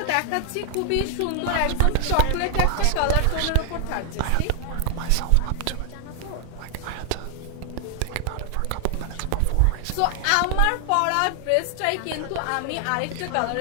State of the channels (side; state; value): both; different; correlation 0.00